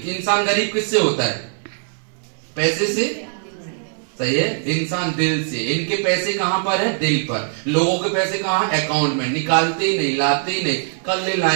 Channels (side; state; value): left; silent; 61 dB below the other